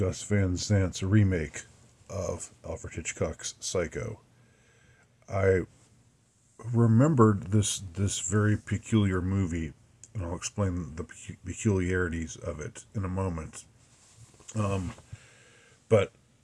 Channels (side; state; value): both; identical; correlation 1.00